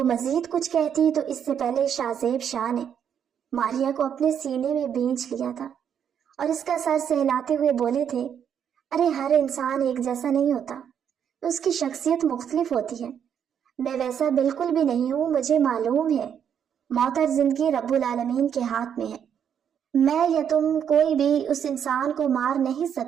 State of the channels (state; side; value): quieter; left; 8.4 dB